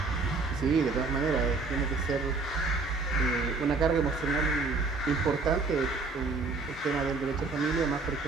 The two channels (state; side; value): quieter; left; 4.0 dB